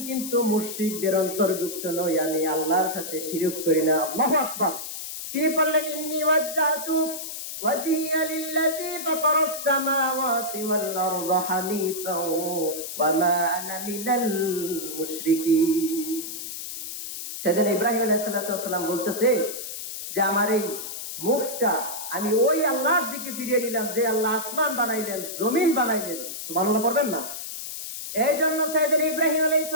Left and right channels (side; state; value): left; noise; hiss, 8 dB below the sound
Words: কিন্তু মুশরিকদের অন্তর্ভুক্ত নই, আমি আল্লাহর সাথে শিরক করি না। আল্লাহু আকবার। তিনি বললেন, ইন্নী ওয়াজ্জাহতু ওয়াজহিয়া লিল্লাযী ফাতারাস সামাওয়াতি ওয়াল আরদা হানিফাও ওয়া মা আনা মিনাল মুশরিকিন। সাইয়েদনা ইব্রাহিম আলাইহিস সালাম বলতেছে যে আমার এই মুখটা আমি ওই আল্লাহর দিকে ফিরিয়ে নিলাম যে আল্লাহ আসমান বানাইলেন, জমিন বানাইলেন। সুবহানাল্লাহ পড়বেন না? এই জন্য সাইয়েদনা ইব্রাহিম আলাইহিস